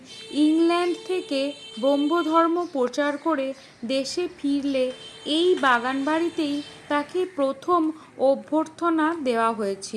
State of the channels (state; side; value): identical; both; correlation 1.00